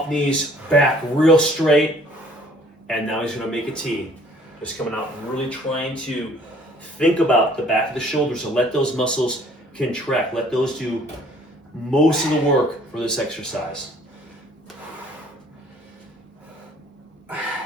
knees, back real straight, and now he's going to make a T. Just coming out, really trying to think about the back of the shoulders and let those muscles contract. Let those do most of the work for this exercise.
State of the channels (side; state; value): both; normal; correlation 0.57